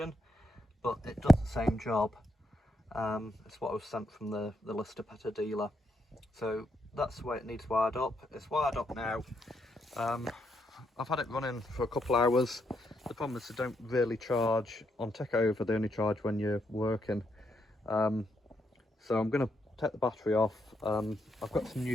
but it does the same job. It's what I was sent from the Lister Petter dealer. So that's the way it needs wired up. It's wired up now. I've had it running for a couple hours. The problem is they don't really charge on takeover, they only charge when you're working. So I'm going to take the battery off. I've got some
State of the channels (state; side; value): normal; both; correlation 0.78